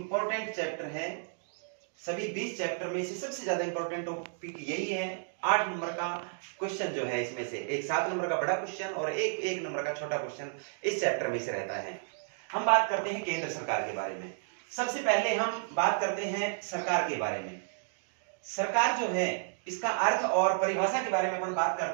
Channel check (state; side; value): silent; left; digital silence